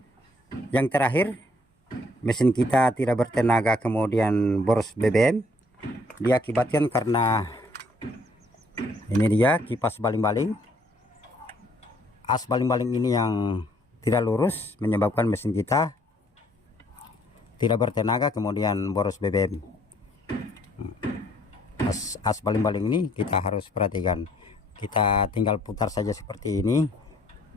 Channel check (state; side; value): normal; both; correlation 0.64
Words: yang terakhir, mesin kita tidak bertenaga kemudian boros BBM, diakibatkan karena ini dia kipas baling-baling. As baling-baling ini yang tidak lurus menyebabkan mesin kita tidak bertenaga kemudian boros BBM. As baling-baling ini kita harus perhatikan. Kita tinggal putar saja seperti ini.